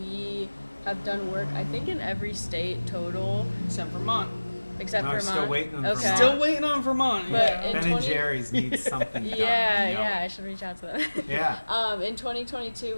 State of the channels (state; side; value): inverted; both; correlation -1.00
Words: have done work, I think, in every state total, Except Vermont. except No, Vermont. still waiting on Okay. Vermont. Still waiting on Vermont. But yeah. in Ben 20 and Jerry's needs something done. Yeah, I should reach out to them. Yeah. In 2022,